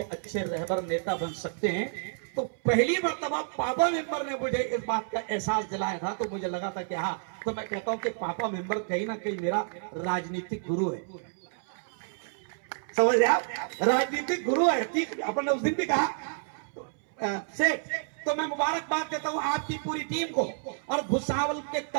अच्छे रहबर नेता बन सकते हैं। तो पहली मर्तबा पापा मेंबर ने मुझे इस बात का एहसास दिलाया था, तो मुझे लगा था कि हाँ, तो मैं कहता हूं कि पापा मेंबर कहीं ना कहीं मेरा राजनीतिक गुरु है। समझ रहे आप, राजनीतिक गुरु है। ठीक, अपन ने उस दिन भी कहा सेठ तो मैं मुबारकबाद देता हूं आपकी पूरी टीम को और भुसावल के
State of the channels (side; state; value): left; silent; 58 dB below the other